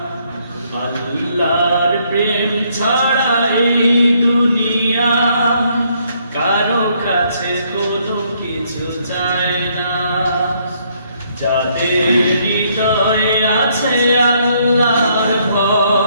আল্লাহর প্রেম ছাড়া এই দুনিয়া কারো কাছে কোনো কিছু চায় না। যাদের হৃদয়ে আছে আল্লাহর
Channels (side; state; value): both; inverted; correlation -0.70